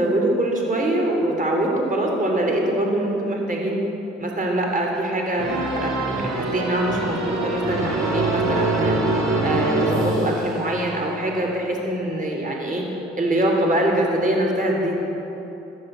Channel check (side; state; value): both; normal; correlation 0.49